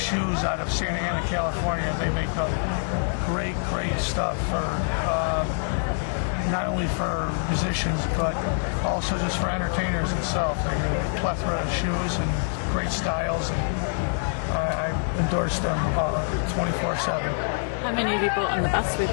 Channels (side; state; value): right; silent; digital silence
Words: out of Santa Ana, California. They make great stuff for not only for musicians, but also just for entertainers itself. They have a plethora of shoes and great styles. And I endorse them 24/7. How many have you bought on the bus with